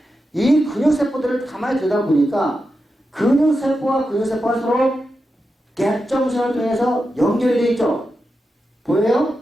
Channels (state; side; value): normal; both; correlation 0.89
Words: 이 근육세포들을 가만히 들여다보니까 근육세포와 근육세포가 서로 갭정선을 통해서 연결이 되어 있죠. 보여요?